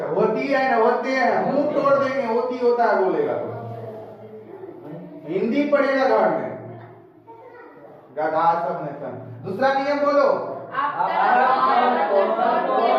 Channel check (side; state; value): both; identical; correlation 1.00